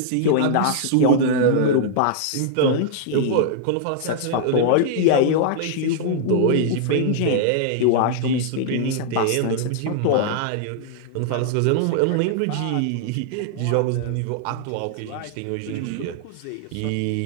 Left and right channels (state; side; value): different; both; correlation -0.01